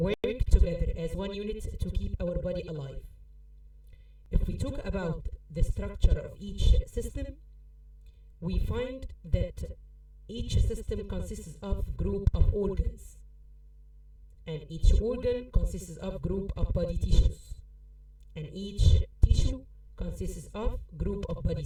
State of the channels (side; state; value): both; identical; correlation 1.00